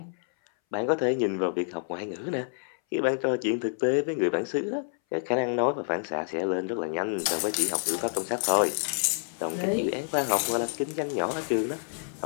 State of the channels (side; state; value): right; silent; 59 dB below the other